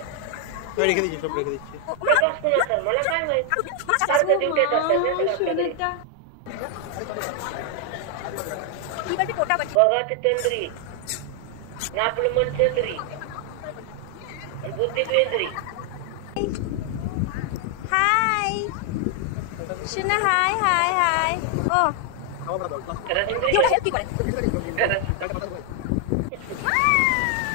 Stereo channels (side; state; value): both; different; correlation 0.00